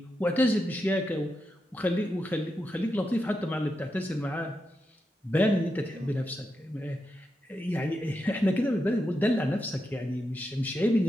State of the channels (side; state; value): both; normal; correlation 0.86